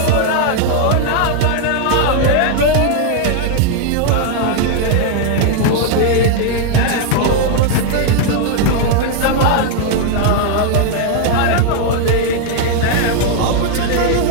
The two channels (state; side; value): different; both; correlation 0.00